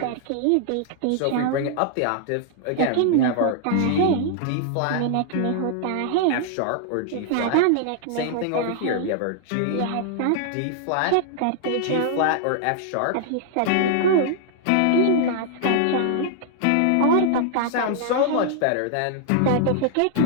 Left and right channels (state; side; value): different; both; correlation -0.01